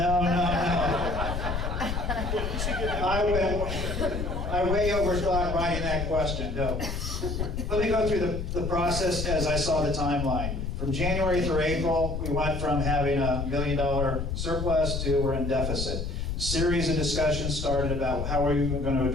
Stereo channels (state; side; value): noise; left; rumble, 3 dB below the sound